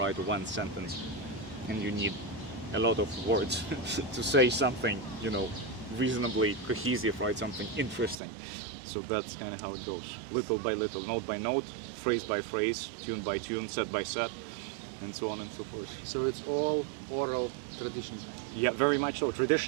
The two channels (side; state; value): left; drops out; at 8.2 s